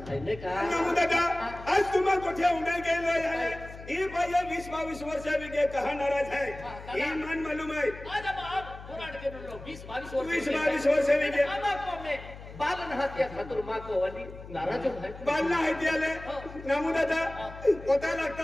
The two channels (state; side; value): noise; left; hum, 15 dB below the sound